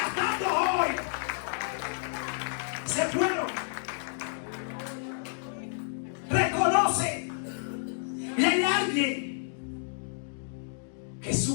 hoy. Se fueron. Reconoce. Y hay alguien que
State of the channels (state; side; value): silent; right; digital silence